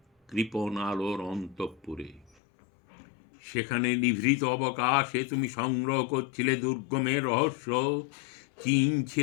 কৃপণ আলোর অন্তঃপুরে। সেখানে নিভৃত অবকাশে তুমি সংগ্রহ করছিলে দুর্গমের রহস্য,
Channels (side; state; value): right; drops out; at 2.3 s